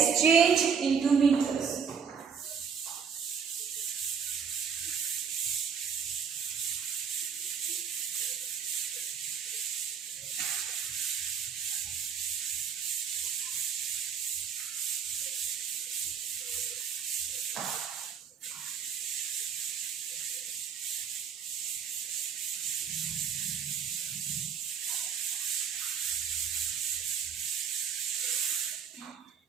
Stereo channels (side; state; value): left; quieter; 6.9 dB